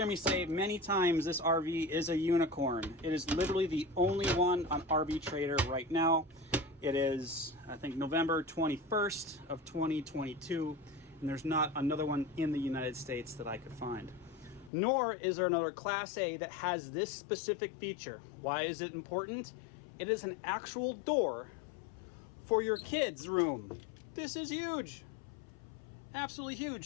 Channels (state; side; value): drops out; right; at 14.7 s